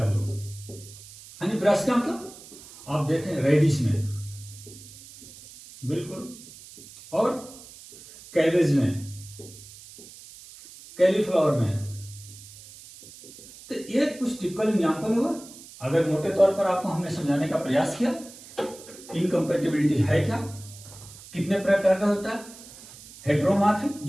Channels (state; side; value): noise; right; hiss, 18 dB below the sound